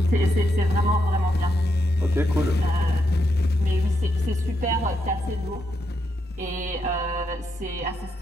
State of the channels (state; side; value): normal; both; correlation 0.81